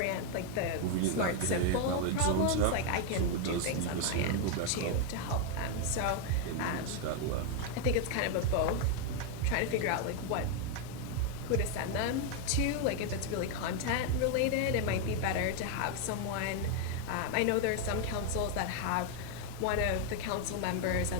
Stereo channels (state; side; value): different; both; correlation 0.01